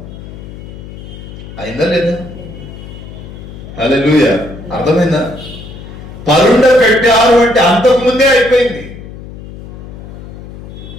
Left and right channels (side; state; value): left; noise; hum, 14 dB below the sound